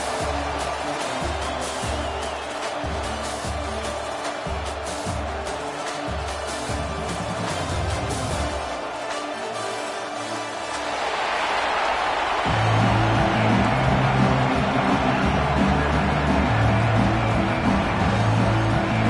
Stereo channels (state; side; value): identical; both; correlation 1.00